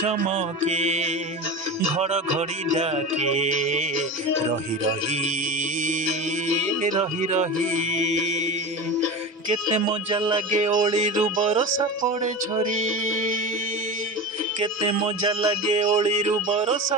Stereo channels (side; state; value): both; normal; correlation 0.27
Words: घड़घड़ी डाके रही रही रही रही केते मजा लगे ओळीरु बरसा पड़े झरी केते मजा लगे ओळीरु